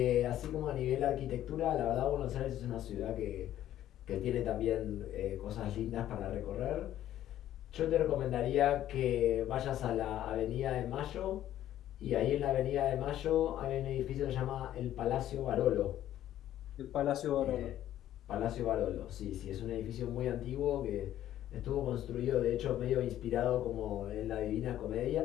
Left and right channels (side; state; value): right; quieter; 12.3 dB